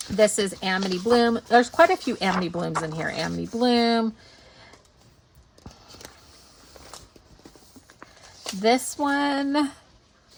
This is Amity Bloom. There's quite a few Amity Blooms in here. Amity Bloom. This one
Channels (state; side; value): identical; both; correlation 1.00